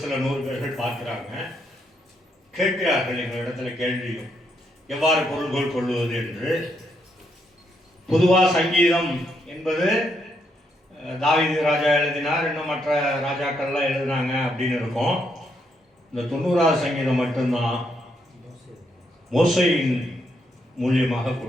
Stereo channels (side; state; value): both; normal; correlation 0.77